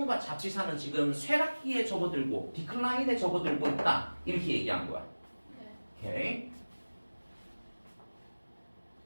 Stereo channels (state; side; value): inverted; both; correlation -1.00